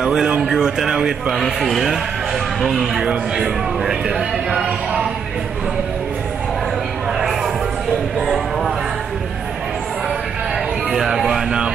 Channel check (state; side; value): quieter; left; 6.8 dB